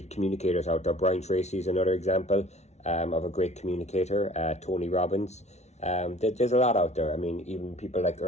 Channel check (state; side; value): late; right; 0.32 ms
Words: communicators out there. Brian Tracy is another example of a great communicator. Tony Robbins. There's a lot out there. I mean, even people like